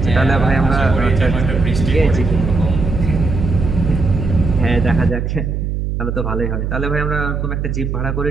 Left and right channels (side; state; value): right; noise; hum, 2 dB below the sound